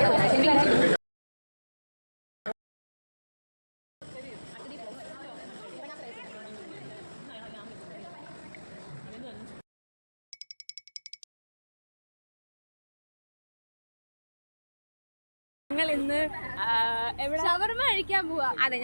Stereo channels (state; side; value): inverted; both; correlation -1.00